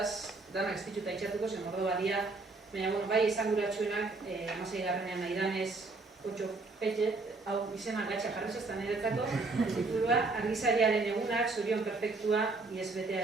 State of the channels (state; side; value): quieter; left; 3.5 dB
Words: danak ez dituta itxatuko, zen mordo badia, baina bai esanguratsuenak, 16. nahi danez, 8 petxe, hau izena gatxa jarri zestan niretzako, titulua, Argizariaren egunak, Zorion perfektua, ISBT